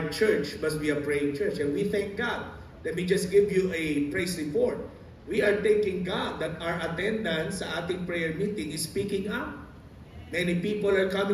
church must be a praying church. And we thank God. Let me just give you a praise report. We are thanking God that our attendance sa ating prayer meeting is picking up. Many people are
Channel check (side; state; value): both; identical; correlation 1.00